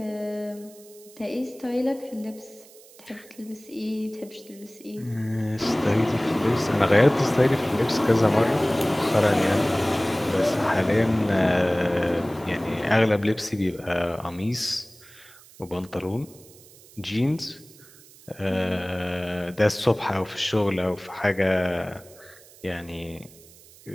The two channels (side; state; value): right; noise; hiss, 23 dB below the sound